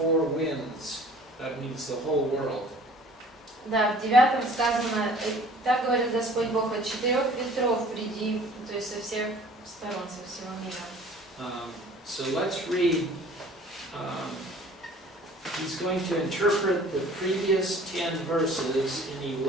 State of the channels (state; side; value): normal; both; correlation 0.50